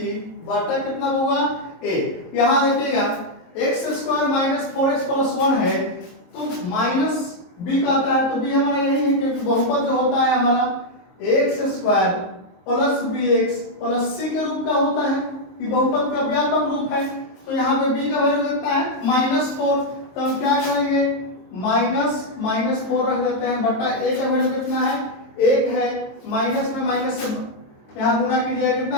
बटा कितना होगा? ए। यहां देखिएगा x square minus 4x plus 1 है तो माइनस बी का आता है तो बी हमारा यही है, क्योंकि बहुपद जो होता है हमारा x square plus b x plus c के रूप का होता है। ये बहुपद का व्यापक रूप है। तो यहाँ पे बी का वैल्यू कितना है? -4। तो हम क्या करेंगे? -4 रख देते हैं बटा ए का वैल्यू कितना है? 1 है। माइनस में माइनस से यहाँ गुणा कीजिएगा कितना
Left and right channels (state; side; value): late; right; 22 ms